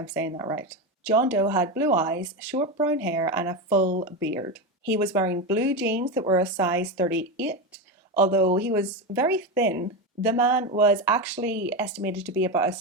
saying that right. John Doe had blue eyes, short brown hair, and a full beard. He was wearing blue jeans that were a size 38. Although he was very thin, the man was actually estimated to be about a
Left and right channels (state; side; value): normal; both; correlation 0.15